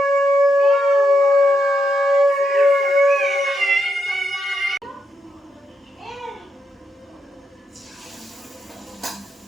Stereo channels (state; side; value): normal; both; correlation 0.81